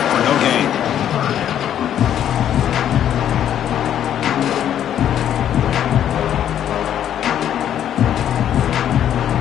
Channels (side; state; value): right; quieter; 10.2 dB